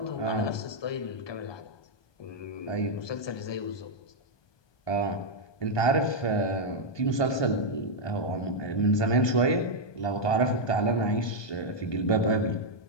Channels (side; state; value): right; late; 1.2 ms